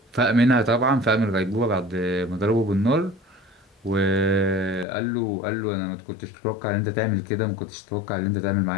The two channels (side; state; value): right; drops out; at 4.9 s